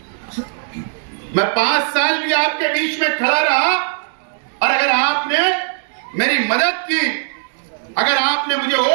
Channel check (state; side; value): silent; left; digital silence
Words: मैं 5 साल भी आपके बीच में खड़ा रहा, और अगर आपने मेरी मदद की, अगर आपने मुझे